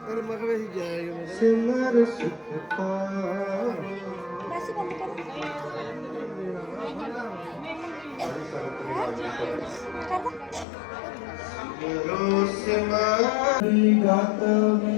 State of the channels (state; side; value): drops out; right; at 10.7 s